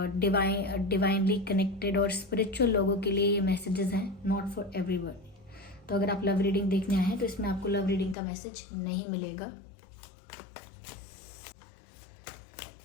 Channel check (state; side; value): drops out; right; at 8.2 s